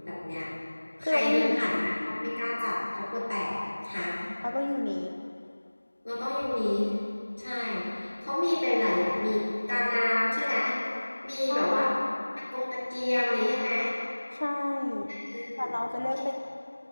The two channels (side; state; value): both; inverted; correlation -1.00